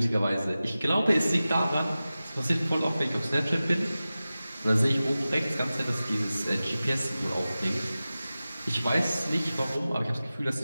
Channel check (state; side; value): inverted; both; correlation -0.96